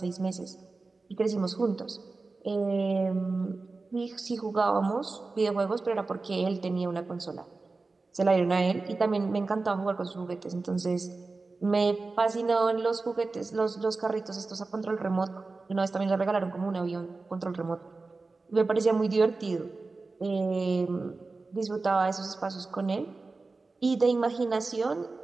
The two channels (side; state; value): left; quieter; 3.7 dB